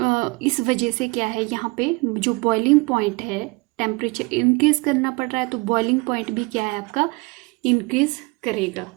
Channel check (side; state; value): left; quieter; 27.6 dB